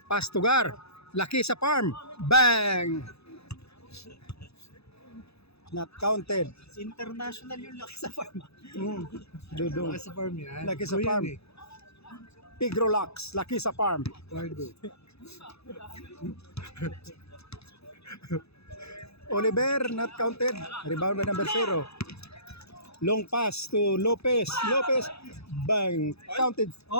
Pass to Gar. Laki sa farm. Bang! Not counted. International yung laki sa farm. Dodo. Laki sa farm yan. Laki sa farm. Pigrolax. Laki sa farm. Oliver, not counted. Rebound by number 0. Long pass to Lopez. Lopez, bang. Counted.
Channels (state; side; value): late; right; 0.79 ms